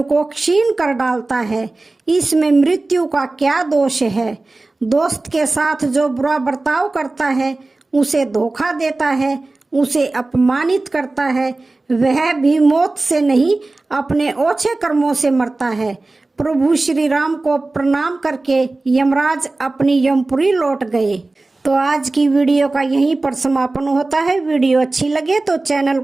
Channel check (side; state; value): left; quieter; 3.2 dB